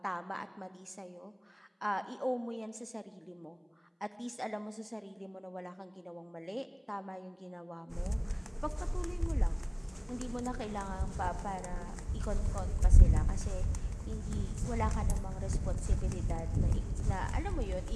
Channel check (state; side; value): identical; both; correlation 1.00